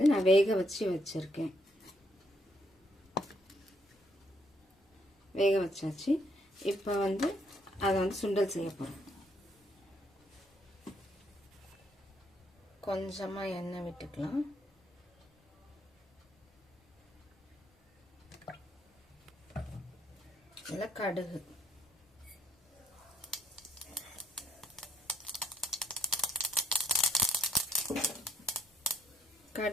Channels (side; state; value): both; normal; correlation 0.71